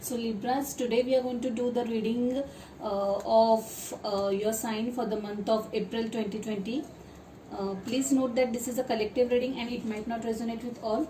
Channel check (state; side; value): identical; both; correlation 1.00